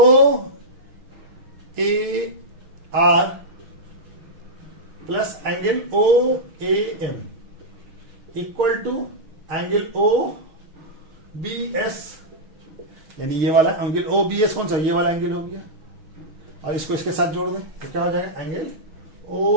A R plus angle O A M equal to angle O B S, यानी ये वाला एंगल ओ बी एस कौन सा, ये वाला एंगल हो गया, और इसको इसके साथ जोड़ दें तो क्या हो जाएगा, एंगल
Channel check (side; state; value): left; late; 6.2 ms